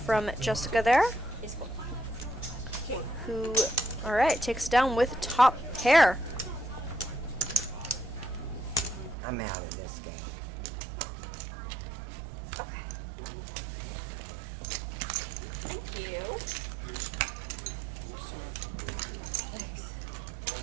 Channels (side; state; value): left; drops out; at 9.2 s